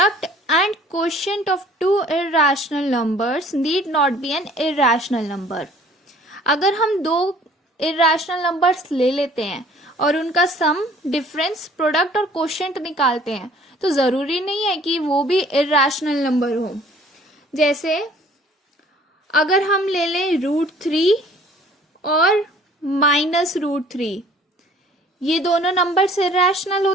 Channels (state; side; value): normal; both; correlation 0.54